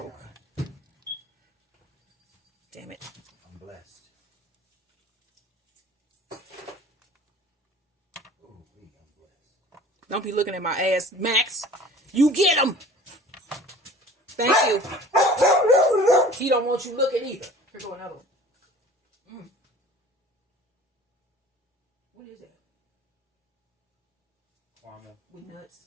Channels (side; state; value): both; normal; correlation 0.45